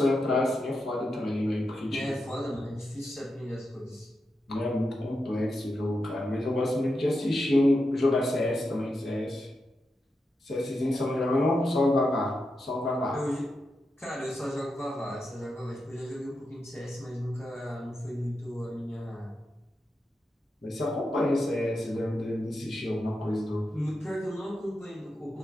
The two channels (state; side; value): normal; both; correlation 0.87